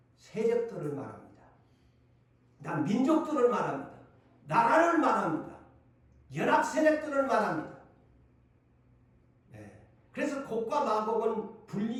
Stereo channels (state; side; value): identical; both; correlation 1.00